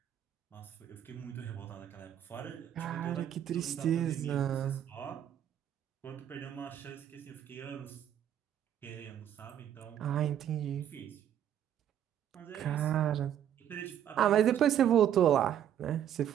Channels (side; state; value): left; quieter; 10.2 dB